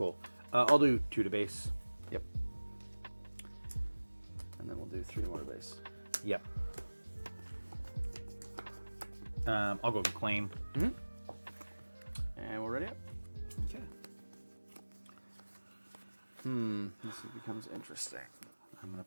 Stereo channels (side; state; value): both; inverted; correlation -1.00